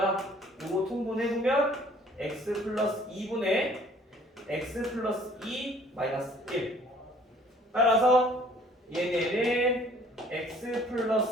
이거 통분해보면 x 플러스 2분의 x 플러스 2 마이너스 1 따라서 얘네는 x x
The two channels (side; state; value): both; normal; correlation 0.56